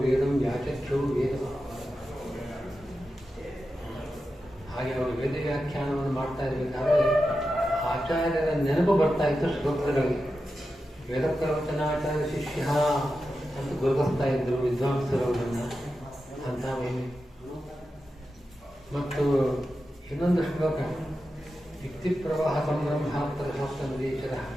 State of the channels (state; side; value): normal; both; correlation 0.90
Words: ವೇದಂ ವ್ಯಾಚಕ್ಷು ವೇದ. ಹಾಗೆ ಅವರು ವೇದ ವ್ಯಾಖ್ಯಾನವನ್ನು ಮಾಡ್ತಾ ಇರಬೇಕಾದ್ರೆ ಆಚಾರ್ಯರ ನೆನಪು ಬರ್ತಾ ಇತ್ತು ಶ್ಲೋಕಗಳಿಗೆ. ವೇದ ಪ್ರವಚನಾಚಾರ್ಯ ಶಿಷ್ಯ ಅಂತ ಗುರುತಿಸ್ತಾ ಇದ್ರು ವಿದ್ವಾಂಸರು ಅವರನ್ನು ಅಂತ ಮಹಿಮೆ. ಮತ್ತು ಇನ್ನೊಂದು ಶ್ಲೋಕ ಯುಕ್ತಿ ಪ್ರವಾಹ ಸಂಬ್ರಹ್ಮಾತ್ತರ ಶಾಸ್ತ್ರ ನದೀಶ್ವರ